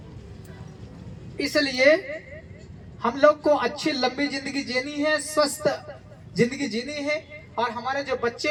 इसलिए हम लोग को अच्छी लंबी जिंदगी जीनी है, स्वस्थ जिंदगी जीनी है और हमारे जो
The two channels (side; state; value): both; identical; correlation 1.00